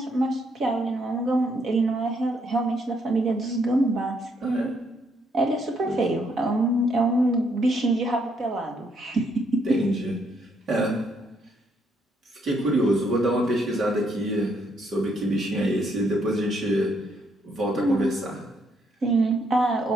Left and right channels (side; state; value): both; normal; correlation 0.73